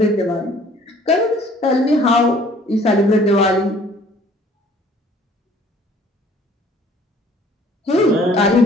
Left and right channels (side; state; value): both; normal; correlation 0.55